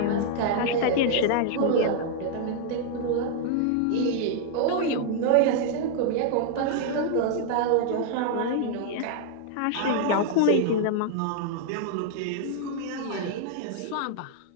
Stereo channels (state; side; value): different; both; correlation 0.00